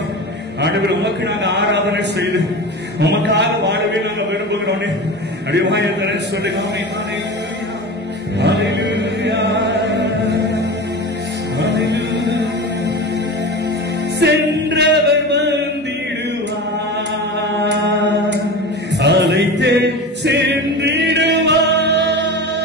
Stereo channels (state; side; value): normal; both; correlation 0.29